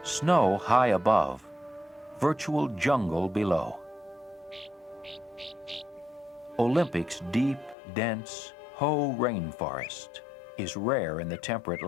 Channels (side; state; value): right; drops out; at 7.8 s